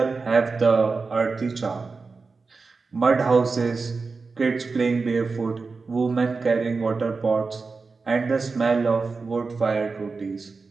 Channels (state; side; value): quieter; left; 4.3 dB